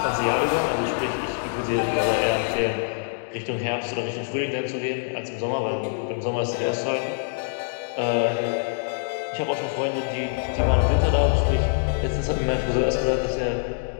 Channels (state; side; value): silent; right; digital silence